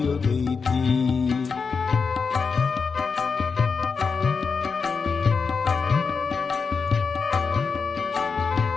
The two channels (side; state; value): right; quieter; 5.3 dB